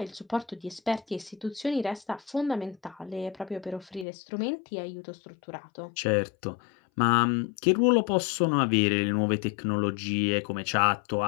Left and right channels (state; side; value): drops out; right; at 4.0 s